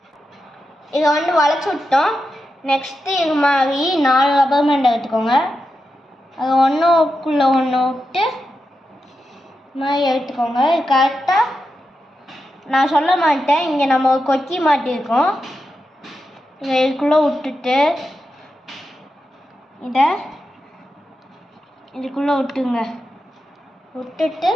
இதை வளைச்சி விட்டோம். நெக்ஸ்ட்டு இது மாதிரி 4 ரப்பர் பேண்ட் எடுத்துக்கோங்க. அது ஒன்றுக்குள்ளே ஒன்று விட்டு மாதிரி எடுத்துக்கோங்க. கரெக்டாக நான் சொல்ல மாட்டேன், இங்கே நம்ம ஒரு கொக்கி மாட்டியிருக்கோம். இதை இதுக்குள்ளே விட்டுட்டு இதை இதுக்குள்ளே விட்டுங்க. விட்டுட்டு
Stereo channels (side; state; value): both; normal; correlation 0.88